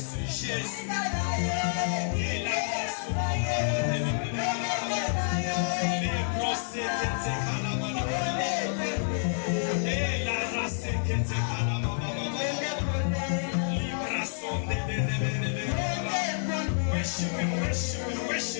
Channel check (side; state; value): right; silent; digital silence